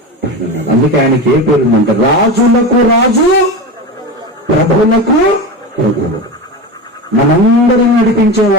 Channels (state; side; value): normal; both; correlation 0.23